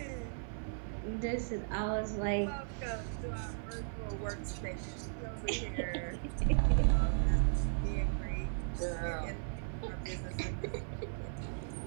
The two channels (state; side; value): silent; left; 53 dB below the other